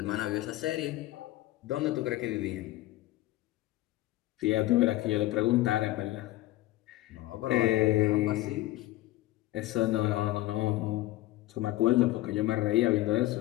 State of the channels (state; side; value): quieter; right; 16.8 dB